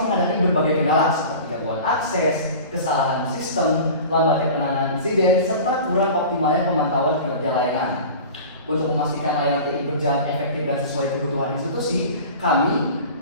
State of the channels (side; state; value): both; inverted; correlation -0.38